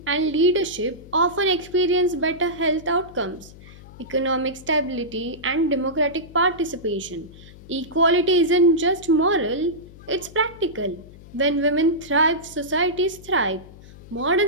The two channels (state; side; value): noise; left; hum, 19 dB below the sound